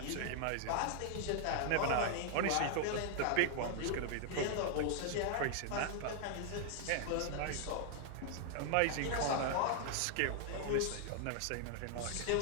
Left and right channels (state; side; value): different; both; correlation 0.00